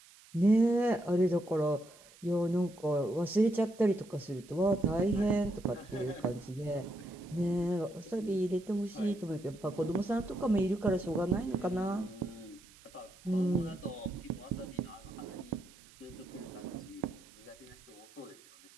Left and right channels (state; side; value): noise; right; hiss, 24 dB below the sound